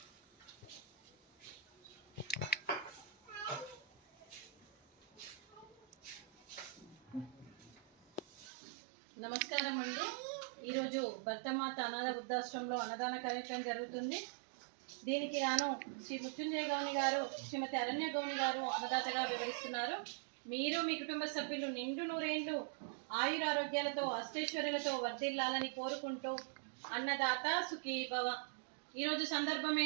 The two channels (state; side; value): drops out; left; at 8.5 s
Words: నమస్కారం అండి. ఈరోజు భర్తమాత అనాథ వృద్ధాశ్రమంలో అన్నదాన కార్యక్రమం జరుగుతుంది. దీనికి గాను శ్రీ మృత్యుంజయ గౌని గారు, శ్రీమతి అరణ్య గౌని గారు అన్నదాతగా వివరిస్తున్నారు. మీరు మీ కుటుంబ సభ్యులు నిండు నూరేండ్లు ఆయురారోగ్యాలతో అష్టైశ్వర్యాలతో వర్ధిల్లాలని కోరుకుంటూ అన్నదాత సుఖీ భవ. ఈరోజు సందర్భం